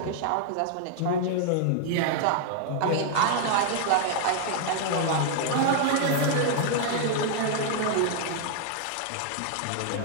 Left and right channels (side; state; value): both; different; correlation 0.00